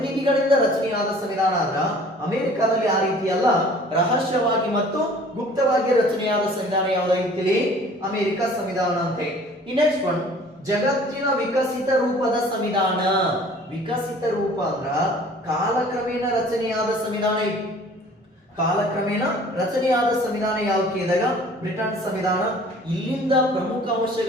ರಚನೆಯಾದ ಸಂವಿಧಾನ ಆದ್ರ ಅಮೆರಿಕದಲ್ಲಿ ಆ ರೀತಿ ಅಲ್ಲ, ರಹಸ್ಯವಾಗಿ ಮತ್ತು ಗುಪ್ತವಾಗಿ ರಚನೆಯಾದ ಸಂವಿಧಾನ ಯಾವುದಾಗಿತ್ತು ಅಮೆರಿಕ ಸಂವಿಧಾನ ಅಂತ. ನೆಕ್ಸ್ಟ್ ಒನ್ ಜಗತ್ತಿನ ವಿಕಸಿತ ರೂಪದ ಸಂವಿಧಾನ. ವಿಕಸಿತ ರೂಪ ಅಂದ್ರ ಕಾಲಕ್ರಮೇಣ ರಚನೆಯಾದ ಸಂವಿಧಾನ. ಕಾಲಕ್ರಮೇಣ ರಚನೆಯಾದ ಸಂವಿಧಾನ ಯಾವುದು ಕೇಳಿದಾಗ ಬ್ರಿಟನ್ ಸಂವಿಧಾನ. ಇಲ್ಲಿಂದ ಪ್ರಮುಖ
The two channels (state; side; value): normal; both; correlation 0.50